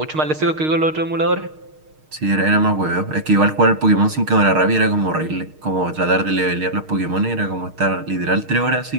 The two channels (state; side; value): late; left; 6.5 ms